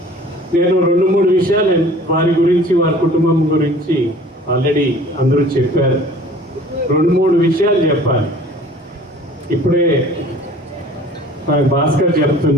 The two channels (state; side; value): normal; both; correlation 0.48